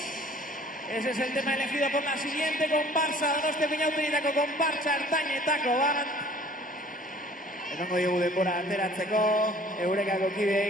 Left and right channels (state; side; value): normal; both; correlation 0.52